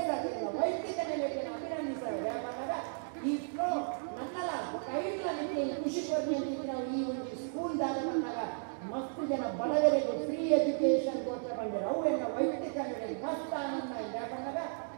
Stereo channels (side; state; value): left; silent; digital silence